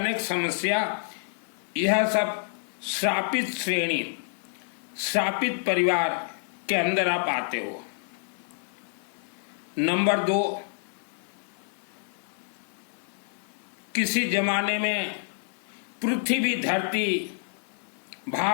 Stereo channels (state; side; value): silent; right; 59 dB below the other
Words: समस्या, यह सब श्रापित श्रेणी, श्रापित परिवार के अंदर आप आते हो। नंबर 2, किसी जमाने में पृथ्वी, धरती,